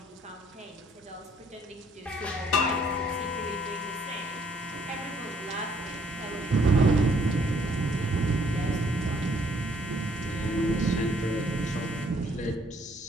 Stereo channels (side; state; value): both; normal; correlation 0.64